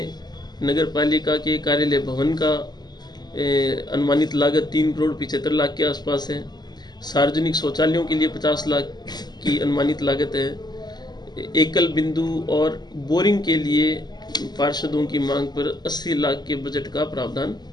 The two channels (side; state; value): right; late; 0.20 ms